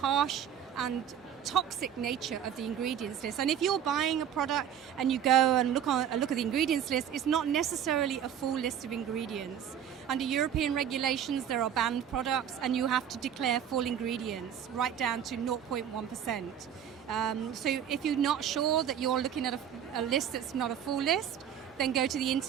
and toxic nature of the ingredients list. And if you're buying a product and you go and look at the ingredients list, it's not necessarily a full list of ingredients. Under European regulations, there are banned products, and you have to declare full ingredients, right down to 0.1%. So if you're not sure that you're looking at a list that's not a full list, then go to the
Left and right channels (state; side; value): quieter; left; 9.1 dB